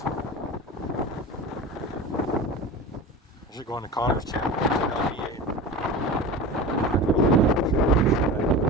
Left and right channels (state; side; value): normal; both; correlation 0.31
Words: I should go on to Connor's channel. It's an LDA.